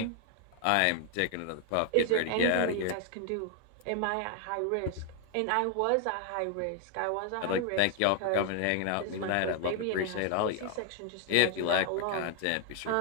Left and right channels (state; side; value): different; both; correlation 0.00